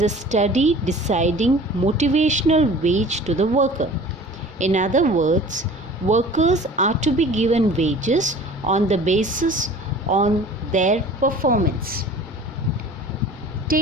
a study deciding motivational wage to the worker. In other words, workers are to be given wages on the basis on their performance.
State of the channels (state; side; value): normal; both; correlation 0.44